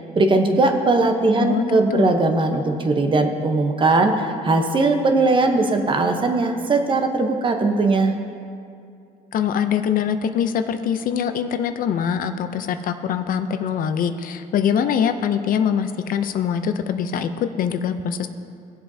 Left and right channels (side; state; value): both; normal; correlation 0.53